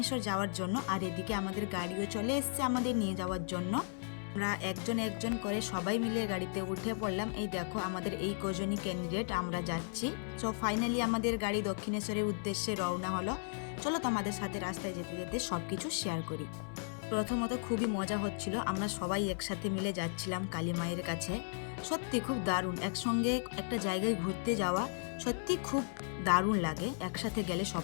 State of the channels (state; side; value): silent; right; 54 dB below the other